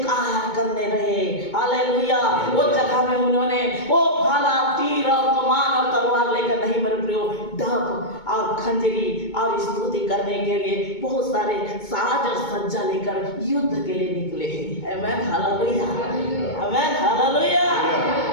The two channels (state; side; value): late; right; 2.2 ms